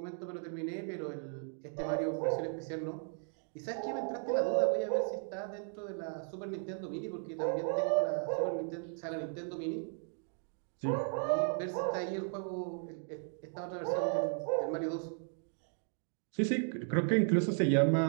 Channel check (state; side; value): silent; left; 54 dB below the other